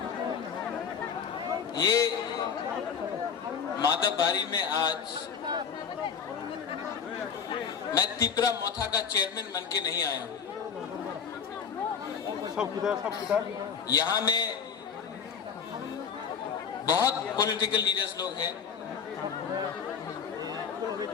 ये माधवबारी में आज मैं तिपरा मोथा का चेयरमैन बन के नहीं आया हूं। यहाँ में बहुत पॉलिटिकल लीडर्स लोग हैं,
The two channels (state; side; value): quieter; right; 6.9 dB